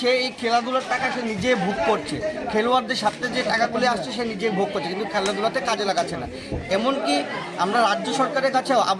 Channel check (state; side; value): identical; both; correlation 1.00